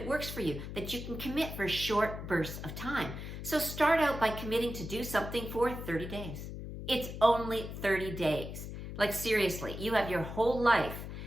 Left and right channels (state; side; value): noise; left; hum, 8 dB below the sound